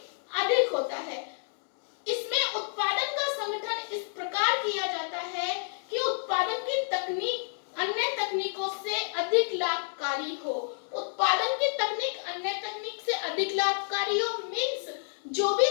अधिक होता है। इसमें उत्पादन का संगठन इस प्रकार किया जाता है कि उत्पादन की तकनीक अन्य तकनीकों से अधिक लाभकारी हो। उत्पादन की तकनीक अन्य तकनीक से अधिक लाभकारी हो मीन्स जो भी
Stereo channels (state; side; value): silent; right; digital silence